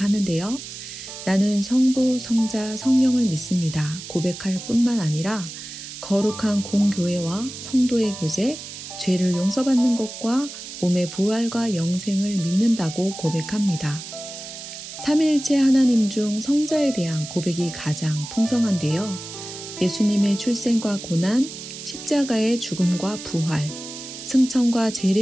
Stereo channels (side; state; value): right; noise; hiss, 11 dB below the sound